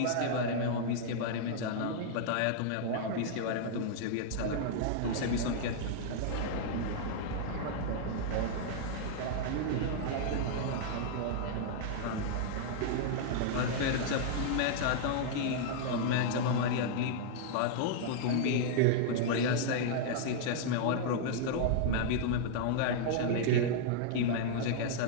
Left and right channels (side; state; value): both; different; correlation -0.01